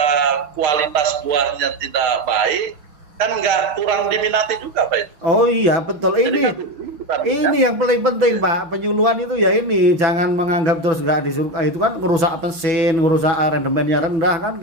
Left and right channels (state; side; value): late; left; 6.2 ms